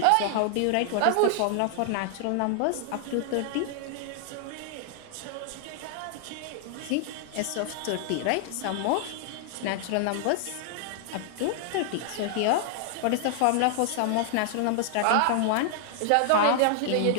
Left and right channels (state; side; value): different; both; correlation 0.00